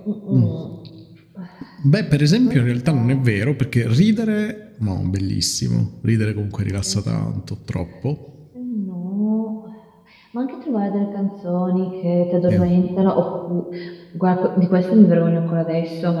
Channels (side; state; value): both; identical; correlation 1.00